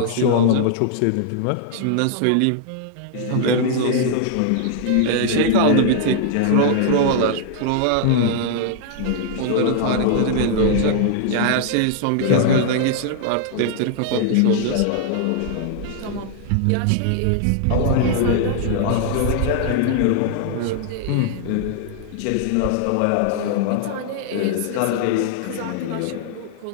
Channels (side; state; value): both; different; correlation -0.01